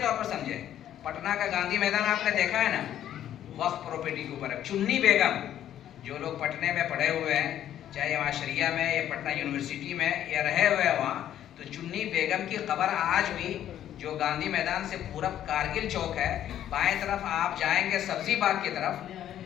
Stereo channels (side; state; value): right; quieter; 11.2 dB